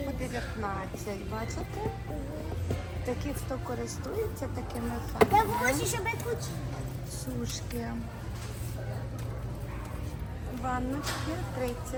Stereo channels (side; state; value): both; identical; correlation 1.00